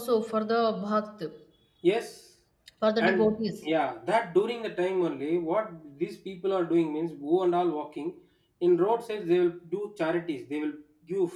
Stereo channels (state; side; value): identical; both; correlation 1.00